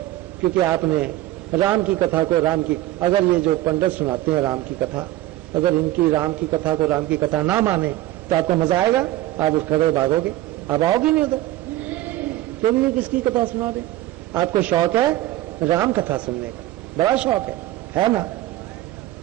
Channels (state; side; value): quieter; left; 15.3 dB